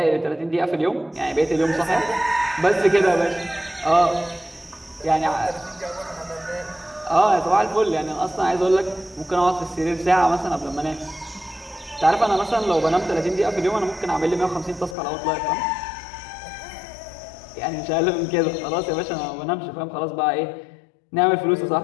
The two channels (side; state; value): right; drops out; at 15.0 s